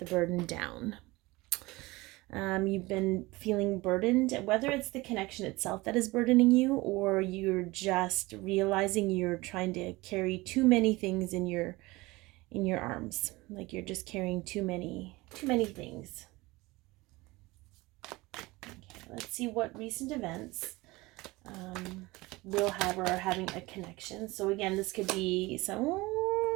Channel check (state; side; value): quieter; left; 21.6 dB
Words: burden down. You've been feeling burdened, whether it's the connection itself that is burdening you, or you're just realizing you're trying to carry too many things in your arms. Like you're just carrying too many things. Okay, let's see what recent events will have or are having a connection. So again, this could be